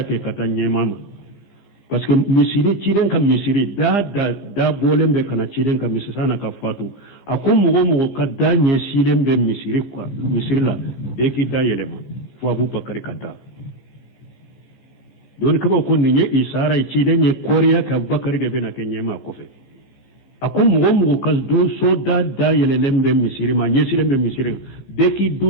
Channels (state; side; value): late; right; 15 ms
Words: ke katanye mama parce que misiri ciden ka misiri da bolembe kana ciden ka misiri sana ka fatu akum mugo ka danye silembe misiri kwa misiri la be ki da yelema fo abubakar kata don kaba ko ni isara ci da ne koriya ka bakari da bena kenye ma kofe akon mugo kas do so da yele lembe misiri ma nye silembe misiri de ki